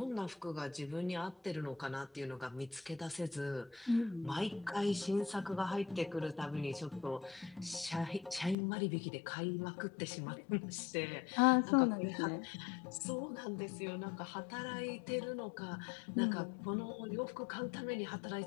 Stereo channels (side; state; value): right; drops out; at 8.6 s